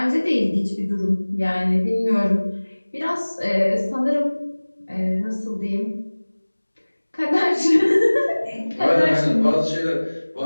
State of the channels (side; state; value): both; inverted; correlation -1.00